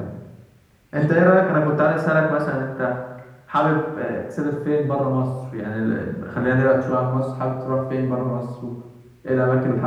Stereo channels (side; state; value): both; identical; correlation 1.00